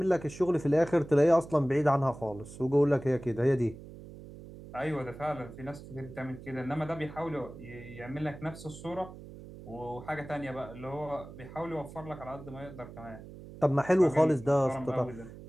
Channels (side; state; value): right; noise; hum, 15 dB below the sound